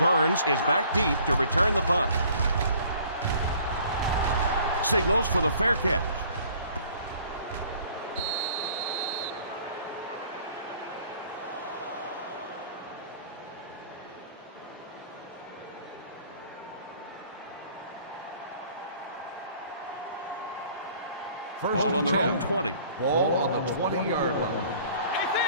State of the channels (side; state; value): both; inverted; correlation -0.54